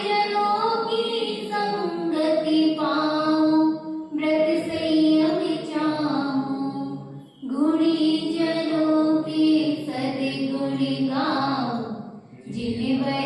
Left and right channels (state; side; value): identical; both; correlation 1.00